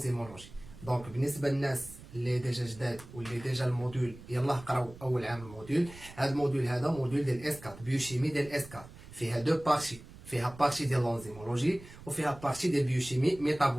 دونك بالنسبه للناس اللي ديجا جداد واللي ديجا الموديول يلاه قراو اول عام الموديول، هاد الموديول هذا موديول ديال اس 4 بيوشيمي ديال اس 4، فيها دو بارتي، فيها بارتي ديال لونزيمولوجي وفيها بارتي ديال بيوشيمي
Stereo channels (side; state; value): right; noise; rumble, 18 dB below the sound